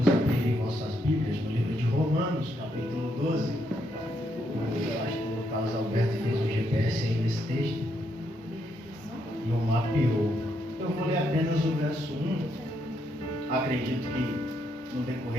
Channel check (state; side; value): normal; both; correlation 0.77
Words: a abrirem vossas Bíblias no livro de Romanos, capítulo 12. O pastor Carlos Alberto fez um GPS aí nesse texto e o mapeou. Eu vou ler apenas o verso 1. Acredito que no